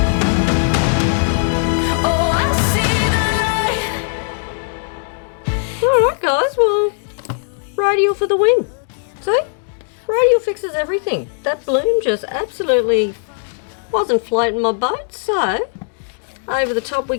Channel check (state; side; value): silent; right; digital silence